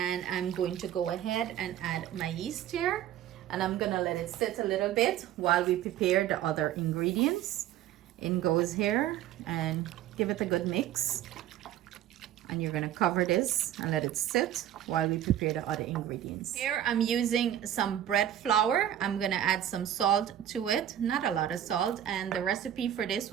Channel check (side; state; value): left; quieter; 11.4 dB